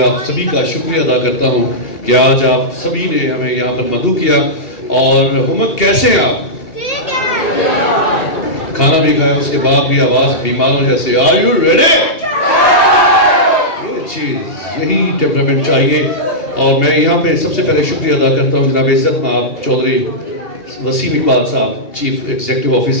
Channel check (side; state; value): right; late; 2.7 ms